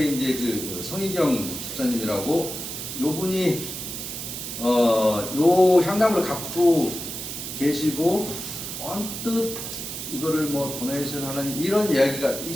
이제 그 성희경 집사님이라고 요 분이 요 향나무를 갖고 계시고 언뜻 이거를 뭐 도네이션 하는 이런 이야기가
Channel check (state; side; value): noise; right; hiss, 7 dB below the sound